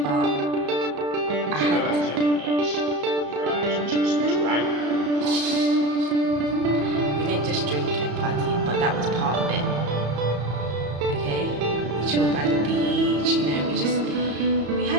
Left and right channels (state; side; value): late; left; 34 ms